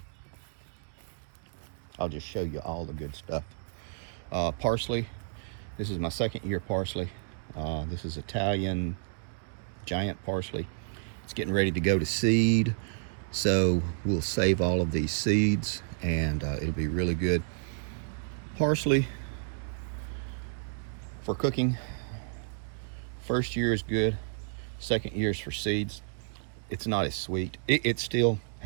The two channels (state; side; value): silent; left; digital silence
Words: I'll just show you all the good stuff. Parsley. This is my 2nd year parsley. This is Italian giant parsley. It's getting ready to go to seed, so we'll save all of these seeds, and it'll be really good. Parsley for cooking. First year is good. Second year is for seeds. It's not as sweet. It still